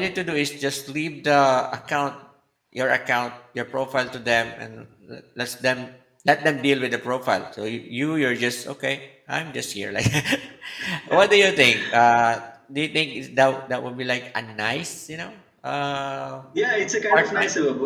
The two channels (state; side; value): identical; both; correlation 1.00